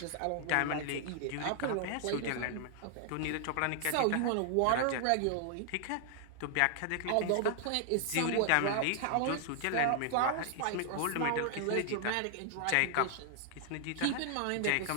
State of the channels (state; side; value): different; both; correlation 0.00